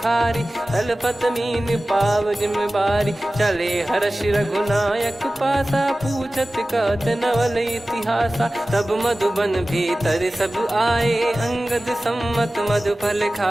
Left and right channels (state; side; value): normal; both; correlation 0.96